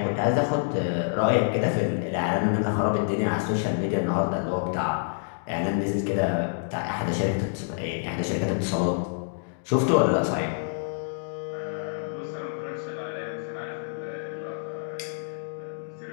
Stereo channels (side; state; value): right; silent; digital silence